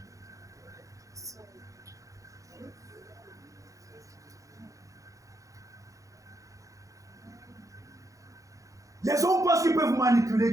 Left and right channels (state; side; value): late; left; 0.16 ms